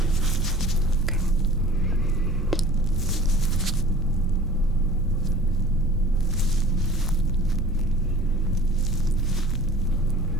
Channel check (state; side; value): normal; both; correlation 0.47